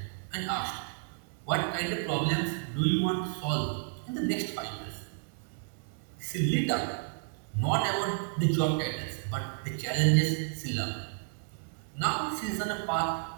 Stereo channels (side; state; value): left; silent; digital silence